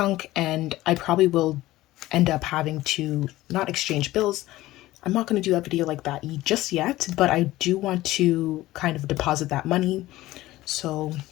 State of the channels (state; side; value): quieter; right; 16.8 dB